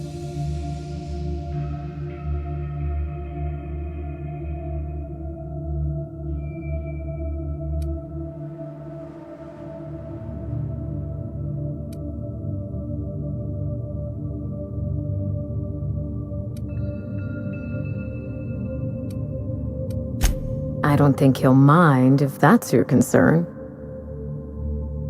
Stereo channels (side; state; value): both; identical; correlation 1.00